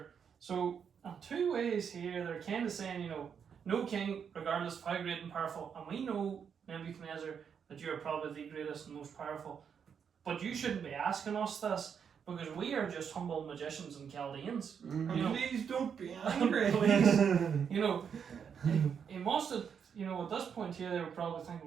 So in 2 ways here, they're kind of saying, no king, regardless of how great and powerful, and we know, Nebuchadnezzar, that you are probably the greatest and most powerful, but you shouldn't be asking us this, because we are just humble magicians and Chaldeans. Please don't be angry. Please. He must have, at this point here, they were probably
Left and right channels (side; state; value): left; quieter; 7.2 dB